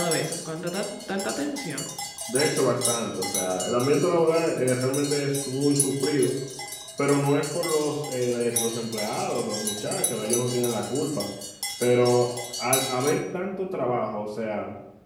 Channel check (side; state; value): both; identical; correlation 1.00